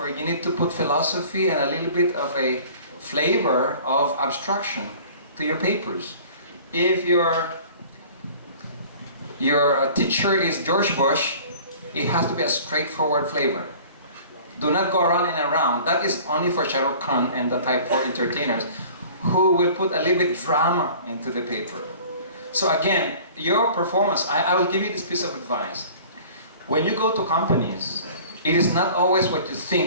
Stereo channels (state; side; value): inverted; both; correlation -0.46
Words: you need to put philosophy and a little bit of a flavor of abstraction to your papers. If your teacher is George Bush, it has to be a straightforward flavor. Do not go around and around. That is only for Shah Rukh Khan and the type 4 entertainers who will put a little bit drama into the paper. So again, your performance, I will give you this piece of advice. When you go to companies, it is not always what you